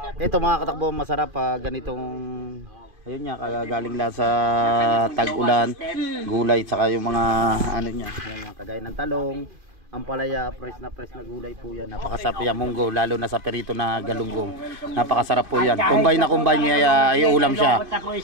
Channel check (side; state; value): left; late; 2.5 ms